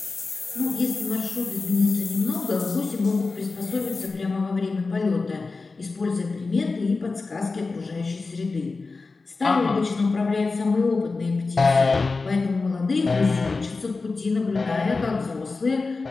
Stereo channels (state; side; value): quieter; right; 3.9 dB